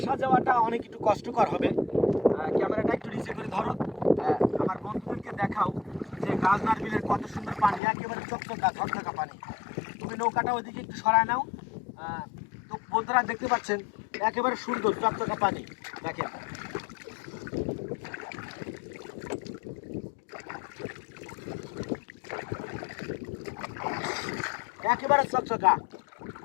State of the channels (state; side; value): drops out; right; at 7.8 s